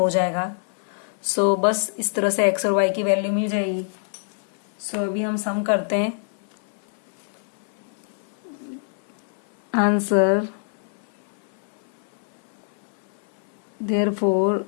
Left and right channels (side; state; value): right; silent; 58 dB below the other